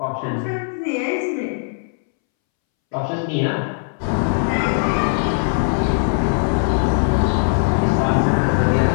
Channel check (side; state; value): right; silent; 66 dB below the other